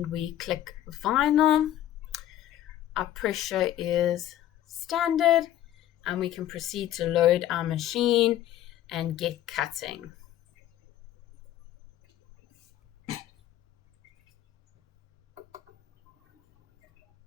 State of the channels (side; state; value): right; quieter; 12.5 dB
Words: we click vinyl. Our pressure is standard, and we can proceed to load our machine and get cutting.